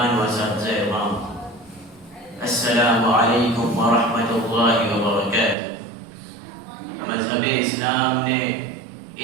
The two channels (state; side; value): drops out; left; at 5.6 s